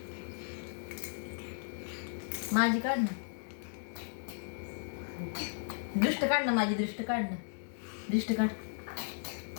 माझी काढ ना. दृष्ट काढ ना. माझी दृष्ट काढ ना. दृष्ट काढ.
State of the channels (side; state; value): right; silent; 54 dB below the other